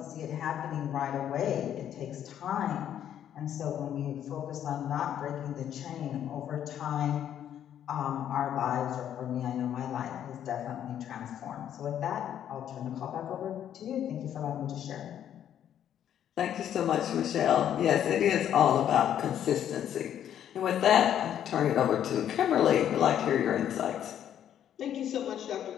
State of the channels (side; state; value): right; quieter; 10.1 dB